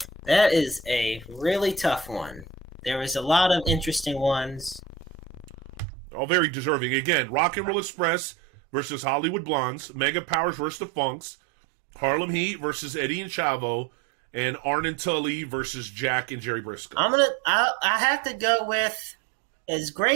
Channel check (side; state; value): left; drops out; at 5.9 s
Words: That is a really tough one. There was a lot of interesting ones. All very deserving. Again, Rock and Roll Express versus Hollywood Blondes, Mega Powers versus the Funks, Harlem Heat versus Eddie and Chavo, and Arn and Tully versus Jack and Jerry Briscoe. I have to go with, as